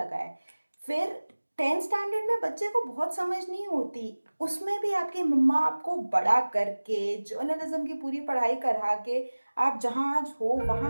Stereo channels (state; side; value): inverted; both; correlation -1.00